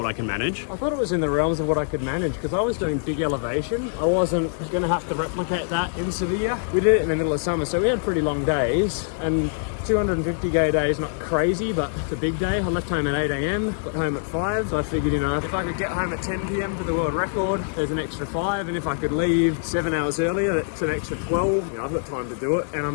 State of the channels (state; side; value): silent; right; digital silence